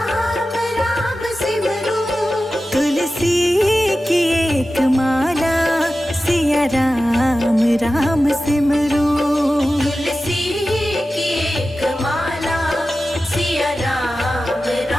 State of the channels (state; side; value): normal; both; correlation 0.94